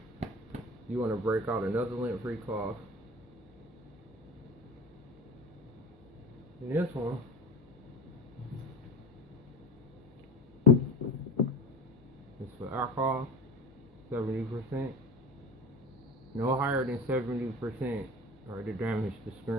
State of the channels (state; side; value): noise; left; hum, 28 dB below the sound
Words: you want to break out another lint-free cloth. And this one is for alcohol, 70%. No higher than 70%. Or to damage the